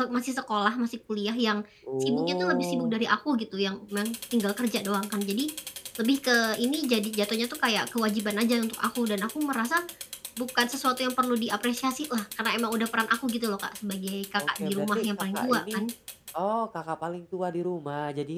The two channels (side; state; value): both; identical; correlation 1.00